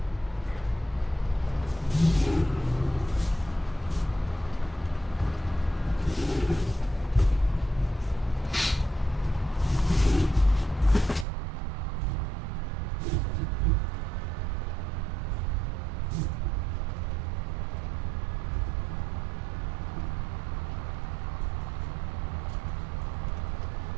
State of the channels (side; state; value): left; drops out; at 11.2 s